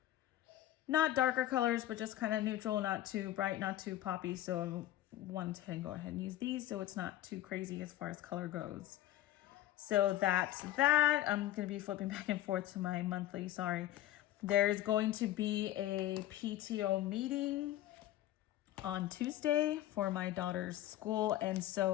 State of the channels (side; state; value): right; quieter; 14.1 dB